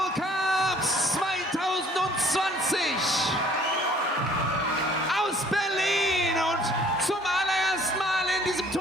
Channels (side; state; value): both; normal; correlation 0.56